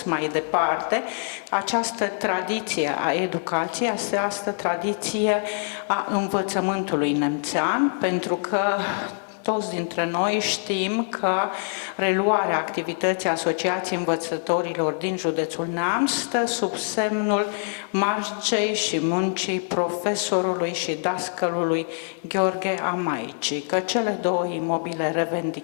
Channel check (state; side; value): silent; right; 61 dB below the other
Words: mai departe această tradiție a educației, această tradiție a învățământului nemțean, pentru că toți dintre noi știm că reluarea activității Asociației Învățătorilor din județul Neamț stă sub semnul marcei și muncii profesorului și dascălului Gheorghe Amaici, că cele două imobile